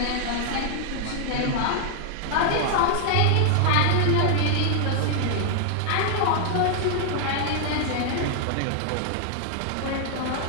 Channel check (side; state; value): both; different; correlation 0.00